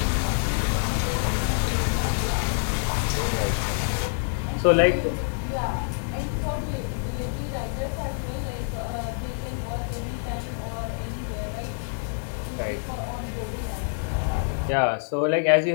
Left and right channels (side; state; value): right; silent; digital silence